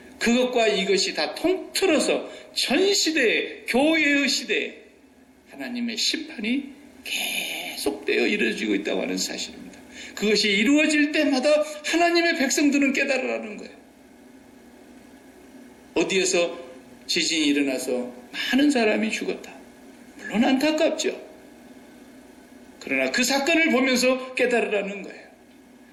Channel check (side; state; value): both; identical; correlation 1.00